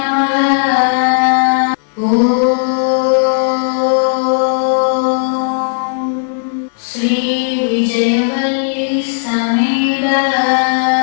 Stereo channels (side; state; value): right; silent; digital silence